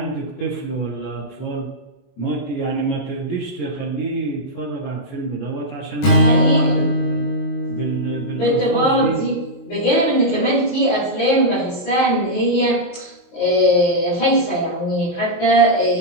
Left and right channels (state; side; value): late; right; 23 ms